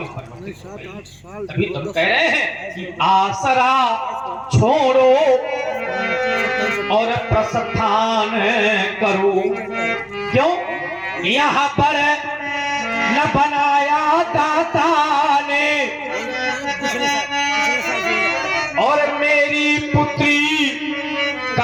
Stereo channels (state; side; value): identical; both; correlation 1.00